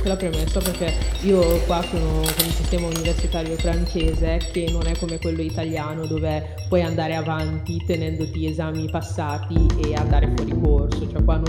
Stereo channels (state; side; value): identical; both; correlation 1.00